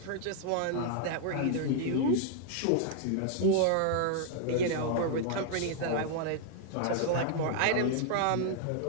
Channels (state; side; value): different; both; correlation 0.00